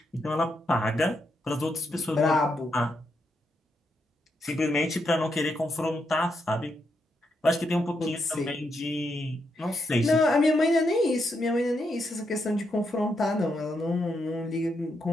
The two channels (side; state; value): both; normal; correlation 0.81